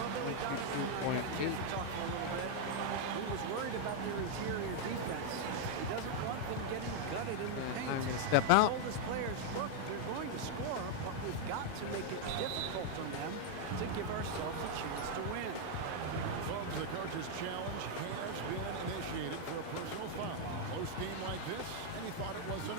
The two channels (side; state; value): both; different; correlation 0.00